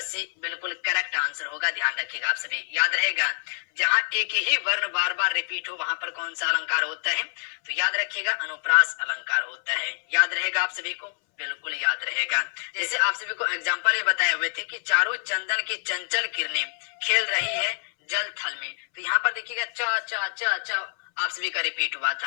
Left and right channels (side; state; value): right; silent; 61 dB below the other